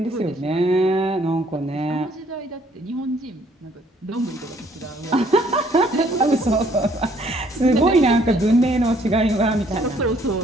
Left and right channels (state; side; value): normal; both; correlation 0.64